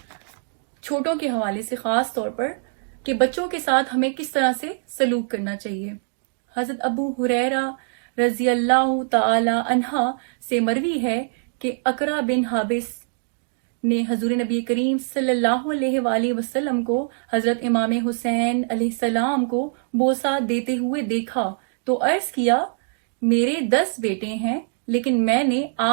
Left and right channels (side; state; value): left; silent; digital silence